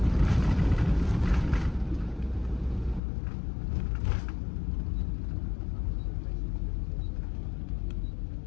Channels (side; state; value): right; drops out; at 3.0 s